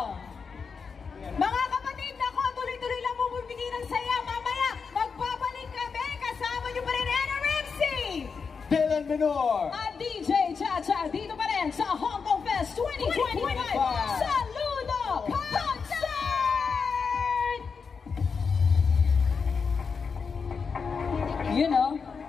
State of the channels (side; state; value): right; quieter; 5.5 dB